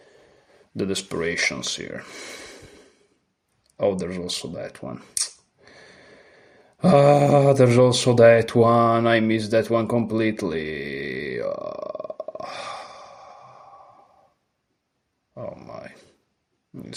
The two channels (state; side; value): identical; both; correlation 1.00